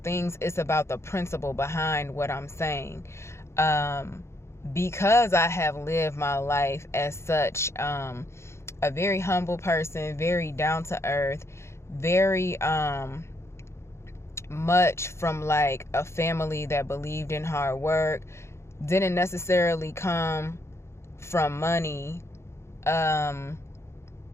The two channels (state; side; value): late; right; 0.13 ms